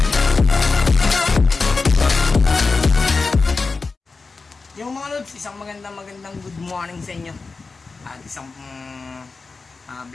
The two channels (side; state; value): right; quieter; 4.2 dB